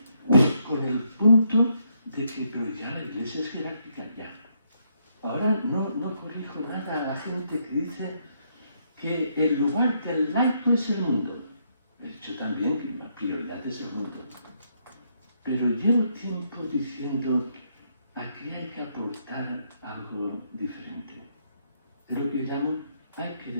con el punto de que, pero ya la Iglesia es jerárquica, ya. Ahora no corrijo nada a la gente que dice que el lugar del laico es el mundo. He dicho también que la prioridad es el mundo. Pero llevo tiempo diciendo, aquí hay que aportar algo diferente. Es lo que llamo, hay que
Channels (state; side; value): inverted; both; correlation -0.75